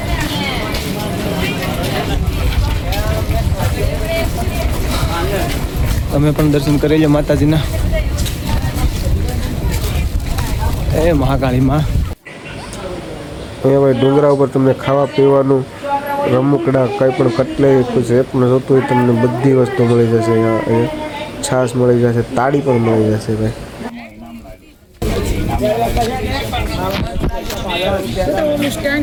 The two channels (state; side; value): identical; both; correlation 1.00